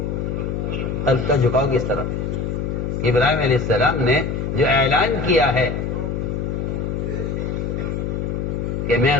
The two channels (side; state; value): left; noise; hum, 2 dB below the sound